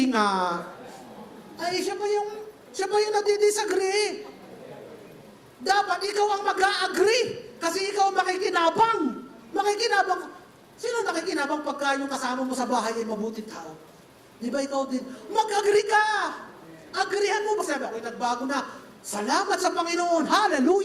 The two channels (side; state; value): both; identical; correlation 1.00